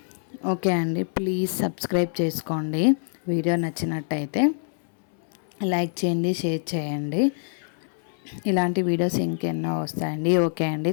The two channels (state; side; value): silent; right; 62 dB below the other